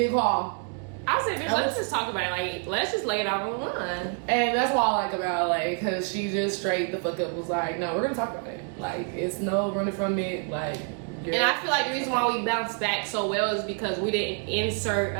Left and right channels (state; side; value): quieter; left; 38.7 dB